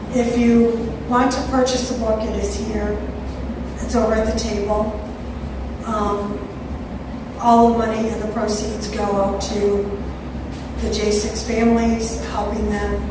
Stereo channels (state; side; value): identical; both; correlation 1.00